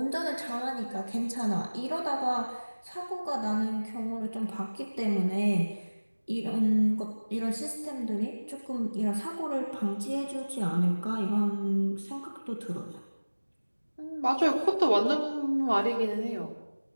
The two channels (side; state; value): both; inverted; correlation -1.00